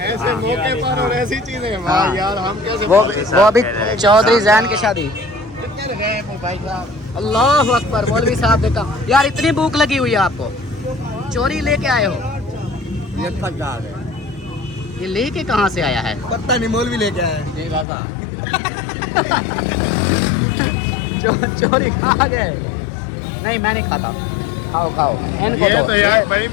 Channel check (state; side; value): drops out; right; at 17.9 s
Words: ऐसे मौके पर और ऐसी चीजें, वाह यार हम कैसे वो अभी चौधरी जैन की शादी। अल्लाह अकबर, मौलवी साहब देखा यार, इतनी भूख लगी हुई है आपको, चोरी लेके आए हो? ये थक जा गए। ये लेके कहाँ से आया है? पता नहीं, मौलवी लेके आया। चोरी खा गए? नहीं मैं नहीं खाता। खाओ खाओ, इनको ये दो। तो यार